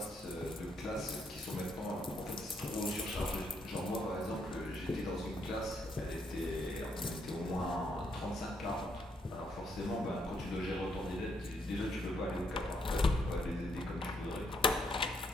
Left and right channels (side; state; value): both; normal; correlation 0.74